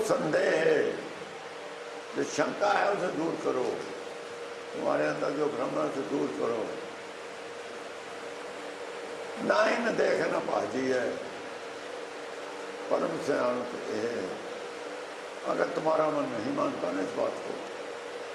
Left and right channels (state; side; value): identical; both; correlation 1.00